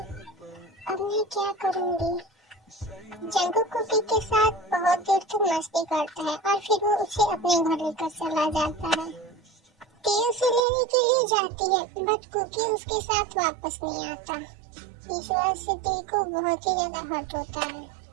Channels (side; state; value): left; drops out; at 10.6 s